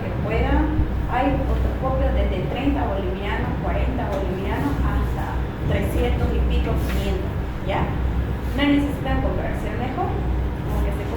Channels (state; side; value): identical; both; correlation 1.00